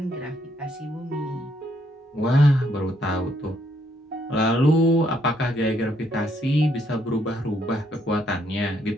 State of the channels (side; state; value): both; normal; correlation 0.72